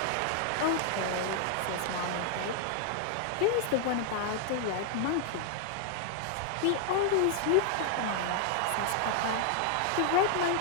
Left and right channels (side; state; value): both; different; correlation 0.00